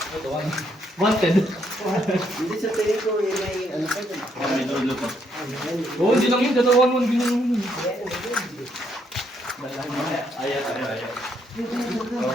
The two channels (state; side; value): normal; both; correlation 0.73